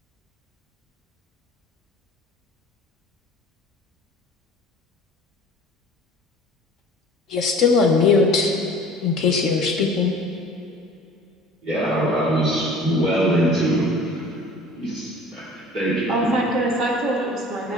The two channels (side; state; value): both; normal; correlation 0.46